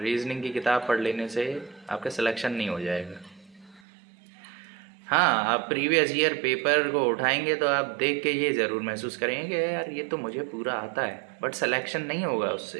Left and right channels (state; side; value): drops out; left; at 3.8 s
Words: की किताब पढ़ लेने से आपका सिलेक्शन नहीं हो जाएगा। हाँ, आप प्रीवियस ईयर पेपर को उठाएंगे तो आप देख के ये ज़रूर महसूस करेंगे कि यार ये तो मुझे पूरा आता है, बट सिलेक्शन नहीं होगा